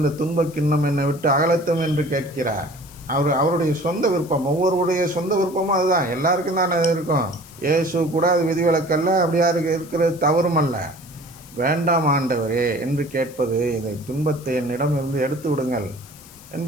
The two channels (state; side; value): noise; left; hiss, 21 dB below the sound